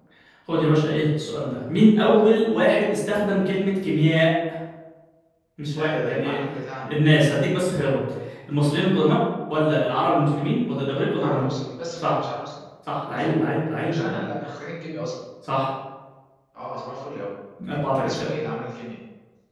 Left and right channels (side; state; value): both; identical; correlation 1.00